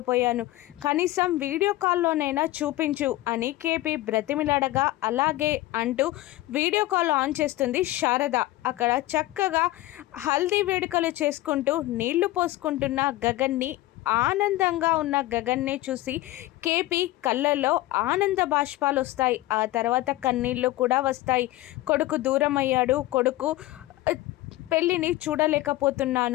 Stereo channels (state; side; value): quieter; right; 17.5 dB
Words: కనీసం వీడియో కాల్లోనైనా చూపించు అని కేపీ బ్రతిమిలాడగా, అలాగే అంటూ వీడియో కాల్ ఆన్ చేస్తుంది శారద. అక్కడ చక్కగా హల్దీ వేడుకలు చేసుకుంటూ నీళ్లు పోసుకుంటున్న గగన్ని, ఆనందంగా ఉన్న గగన్ని చూసి కేపీ కళ్ళల్లో ఆనంద బాష్పాలు వస్తాయి. ఆ తర్వాత కన్నీళ్ళు కూడా వస్తాయి. కొడుకు దూరం అయ్యాడు, కొడుకు పెళ్ళిని